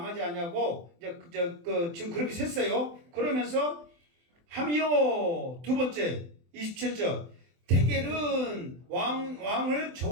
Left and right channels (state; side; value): late; left; 24 ms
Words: 않냐고 지금 그렇게 셌어요. 그러면서 함이요. 두 번째 27절 데겔은 왕을